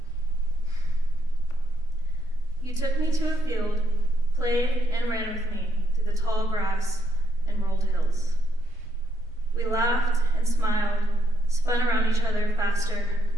You took me to a field, played and ran with me through the tall grass and rolled hills. We laughed and smiled, spun around each other faster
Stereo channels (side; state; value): both; normal; correlation 0.75